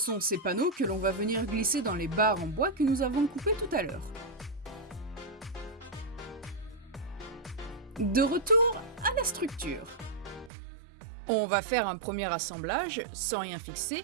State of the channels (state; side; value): drops out; left; at 10.5 s